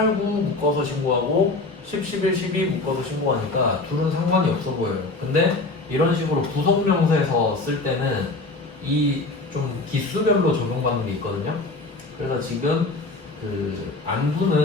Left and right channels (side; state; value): right; quieter; 3.3 dB